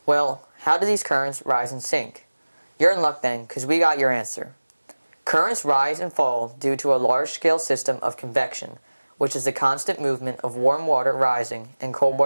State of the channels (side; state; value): both; inverted; correlation -1.00